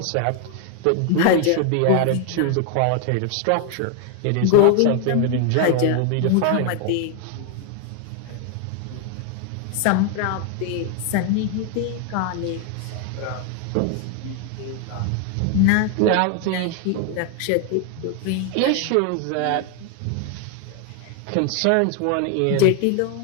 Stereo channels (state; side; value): different; both; correlation 0.00